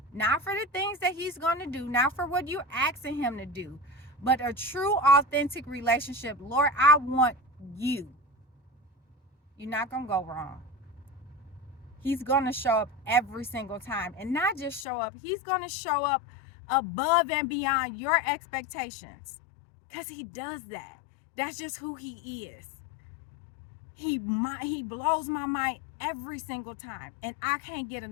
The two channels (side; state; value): right; drops out; at 14.9 s